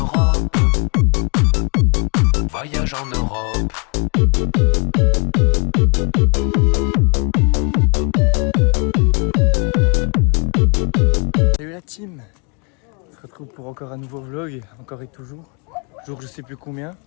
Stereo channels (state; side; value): quieter; right; 35.7 dB